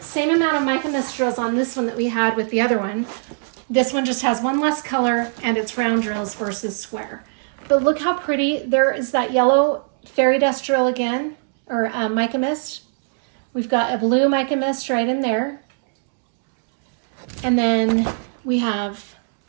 amount of mica mist drills on this one that we had with the other one. This one just has one less color and it's round drills versus square. But look how pretty. There is that yellow fairy dust drill again, or mica mist. We've got a blue mica mist right in there. And then we have,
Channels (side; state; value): left; silent; digital silence